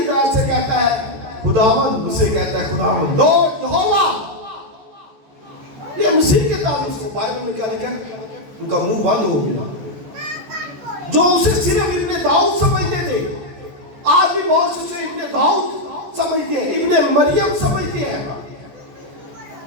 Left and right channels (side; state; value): left; late; 14 ms